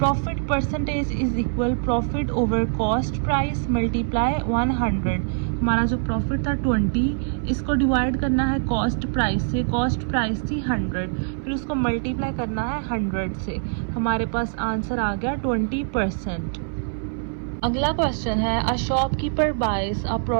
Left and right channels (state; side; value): silent; left; 58 dB below the other